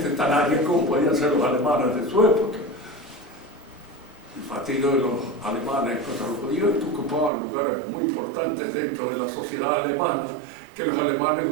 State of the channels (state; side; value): drops out; left; at 7.3 s